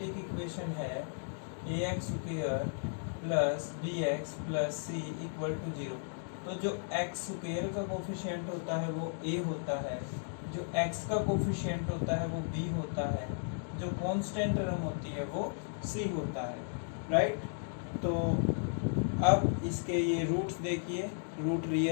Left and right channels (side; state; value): right; silent; digital silence